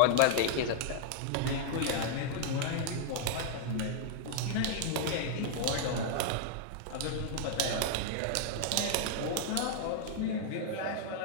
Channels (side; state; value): both; different; correlation 0.00